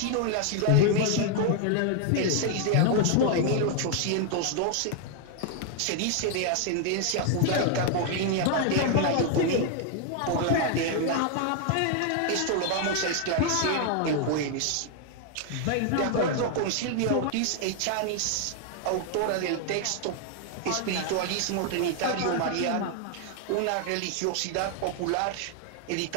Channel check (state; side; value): different; both; correlation 0.00